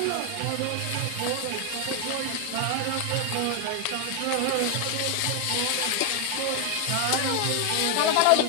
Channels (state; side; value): different; both; correlation 0.00